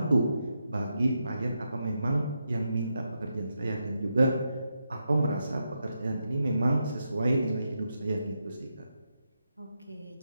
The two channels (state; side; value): inverted; both; correlation -0.84